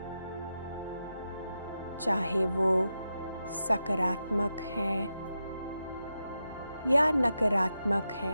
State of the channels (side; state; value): both; inverted; correlation -0.88